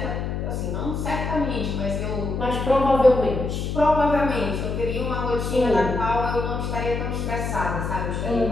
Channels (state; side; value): noise; left; hum, 3 dB below the sound